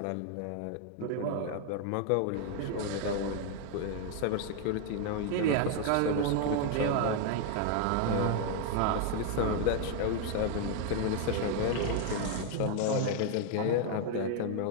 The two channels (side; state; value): both; different; correlation 0.00